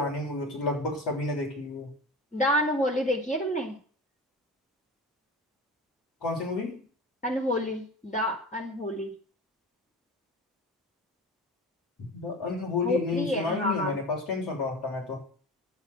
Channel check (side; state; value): both; normal; correlation 0.33